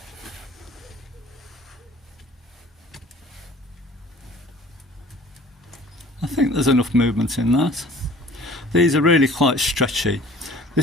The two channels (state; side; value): normal; both; correlation 0.49